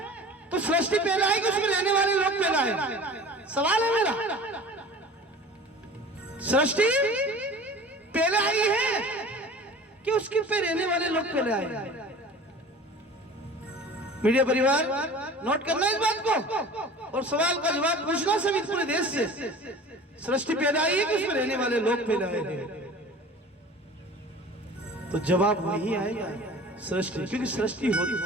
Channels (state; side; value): normal; both; correlation 0.41